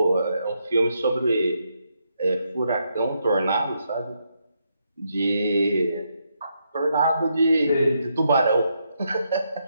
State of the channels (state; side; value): inverted; both; correlation -0.79